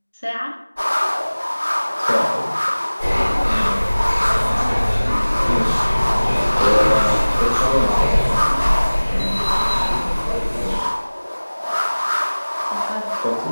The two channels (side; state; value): both; inverted; correlation -1.00